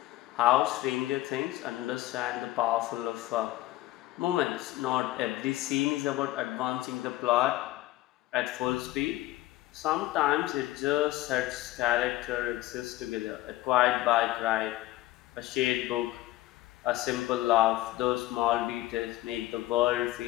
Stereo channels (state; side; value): quieter; right; 16.8 dB